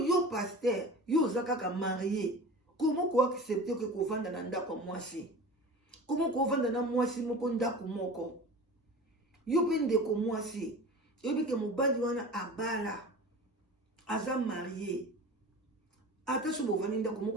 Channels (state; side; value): normal; both; correlation 0.36